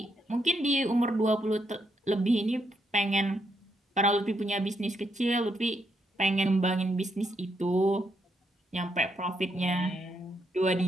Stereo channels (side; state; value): both; normal; correlation 0.78